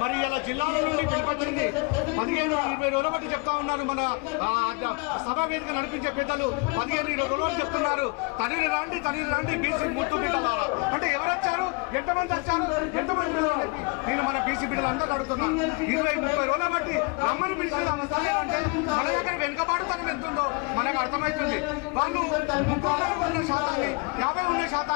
మరి ఇలా జిల్లాల నుండి పిలిపొచ్చింది 15-20 రోజుల బట్టి చెప్తా ఉన్నారు. మన సభా వేదిక నడిపించే పెద్దలు 15-20 రోజుల బట్టి చెప్తున్నారు, తల్లి రండి బీసీ ముట్టు బిడ్డలారా అంటే ఎవరు వచ్చారు, ఎంతమంది వచ్చారు, ఎంతమంది చెప్పి నేను మన బీసీ బిడ్డలందరూ అడుగుతున్నాను. 20-30 రోజుల బట్టి రమ్మని పిలిచిన అవస్థ ఏమంటే మన దగ్గర వెనుకబాటుతనం ఎంతుందో మనకు అర్థమవుతుంది. వాళ్ళు 50 ఉన్న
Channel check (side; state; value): right; quieter; 30.3 dB